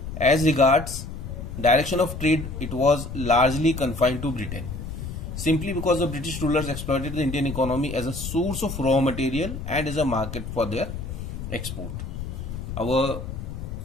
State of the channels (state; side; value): noise; left; rumble, 7 dB below the sound